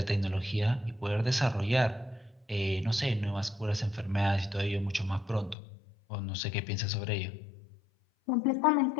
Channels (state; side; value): drops out; right; at 5.6 s